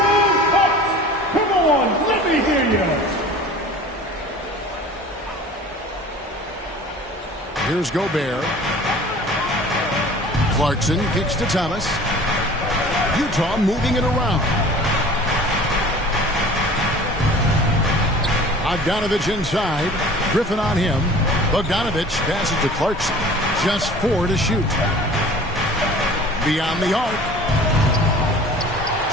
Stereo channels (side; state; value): both; normal; correlation 0.44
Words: Come on, let me hear you. Here's Gobert. Clarkson kicks to Thomas. Utah moving it around. Bogdanovich inside. Griffin on him. Bogdanovich passes to Clarkson. Just 4 to shoot. Beyond the arc.